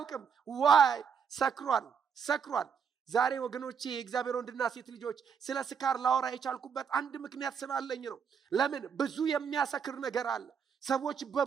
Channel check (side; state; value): left; quieter; 6.8 dB